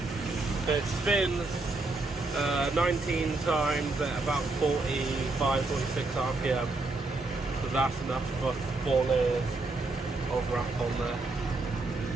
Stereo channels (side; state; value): left; quieter; 3.3 dB